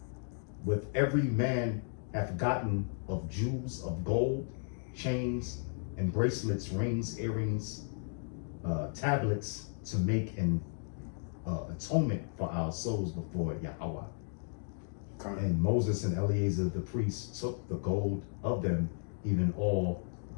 with every man hath gotten of jewels of gold, chains and bracelets, rings, earrings, tablets, to make an atonement for our souls before Yahweh. And Moses and Eleazar the priest took the gold of them, even all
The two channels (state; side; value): silent; right; digital silence